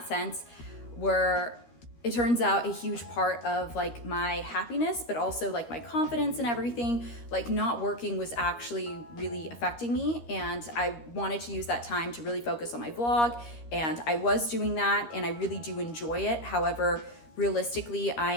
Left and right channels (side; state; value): right; late; 13 ms